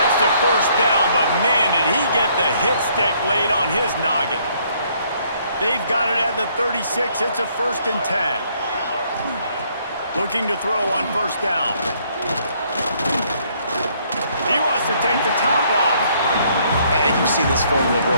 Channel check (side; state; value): both; inverted; correlation -0.66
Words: the first down, but man, did he get the hit stick laid on his noggin. They've got it at the 36. It's a 1st and 10. Looking to throw on first down. He wants to take the top off. And you've seen this formula